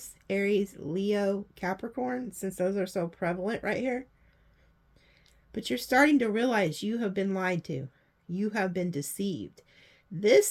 Aries, Leo, Capricorn, since those are so prevalent right here. But you're starting to realize you have been lied to. You have been deceived. This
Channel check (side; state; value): both; identical; correlation 1.00